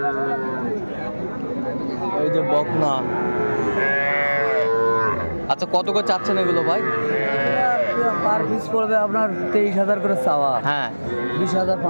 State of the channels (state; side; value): inverted; both; correlation -1.00